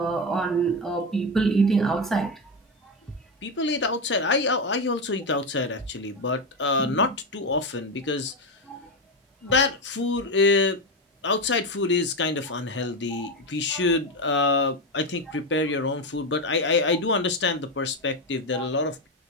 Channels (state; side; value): normal; both; correlation 0.12